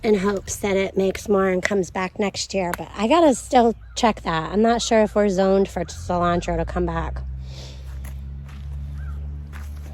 in hopes that it makes more and comes back next year. But I gotta still check that. I'm not sure if we're zoned for cilantro to come back.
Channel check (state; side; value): identical; both; correlation 1.00